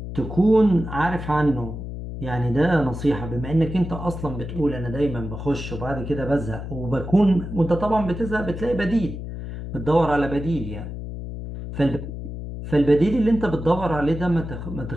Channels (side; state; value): left; noise; hum, 8 dB below the sound